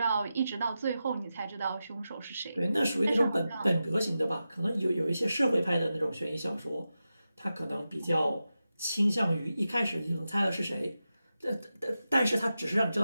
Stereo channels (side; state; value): both; inverted; correlation -0.92